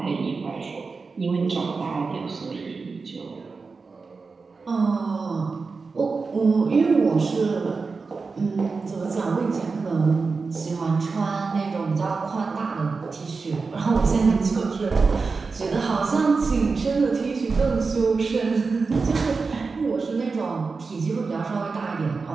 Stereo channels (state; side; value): quieter; left; 4.4 dB